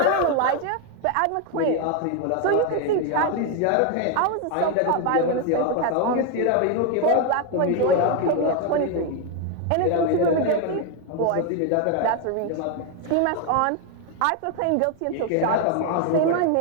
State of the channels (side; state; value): both; different; correlation 0.01